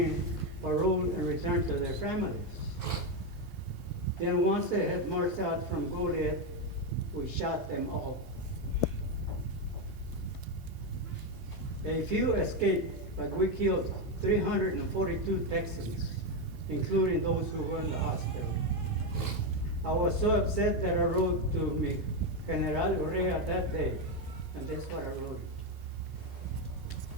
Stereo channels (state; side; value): normal; both; correlation 0.07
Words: paroled and returned to their families. Then once they had marched out from Goliad, we shot them all. A few escaped, but we killed 342 Texans, including those who were in the hospital. I was so upset that I wrote to me General Urrea that day, and that's what I wrote.